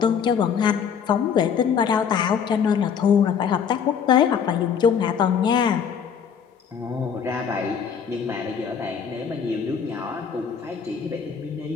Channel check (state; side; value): quieter; right; 7.2 dB